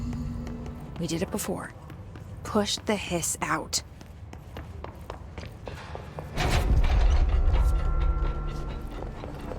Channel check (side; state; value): both; identical; correlation 1.00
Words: We did it before. Push the hiss out.